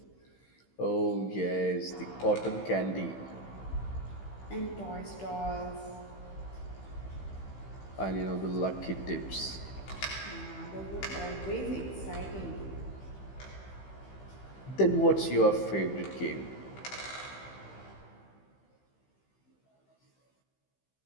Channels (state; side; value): late; right; 15 ms